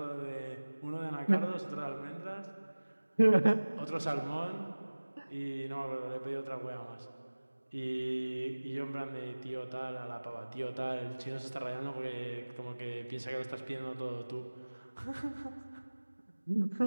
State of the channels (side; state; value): both; inverted; correlation -1.00